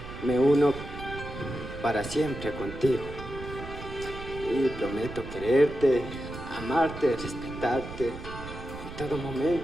me uno para siempre contigo y prometo quererte, amarte, respetarte en todo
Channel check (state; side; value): noise; right; rumble, 11 dB below the sound